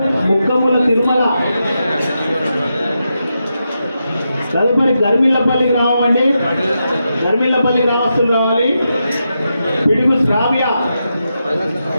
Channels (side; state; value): both; inverted; correlation -0.86